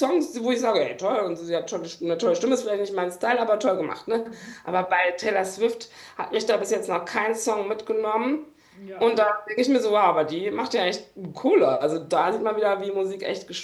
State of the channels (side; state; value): both; identical; correlation 1.00